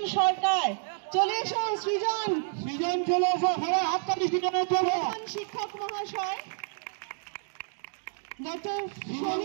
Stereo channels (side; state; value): left; silent; digital silence